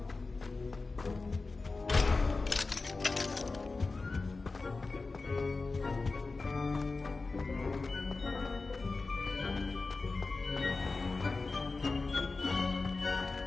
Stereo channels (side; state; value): right; quieter; 3.8 dB